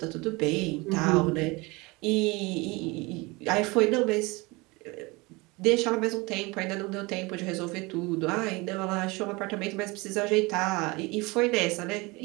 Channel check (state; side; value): quieter; left; 24.7 dB